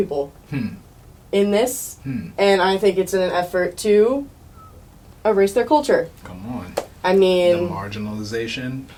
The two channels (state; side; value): identical; both; correlation 1.00